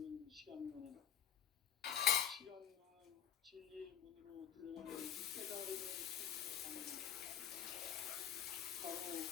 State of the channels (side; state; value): right; quieter; 9.4 dB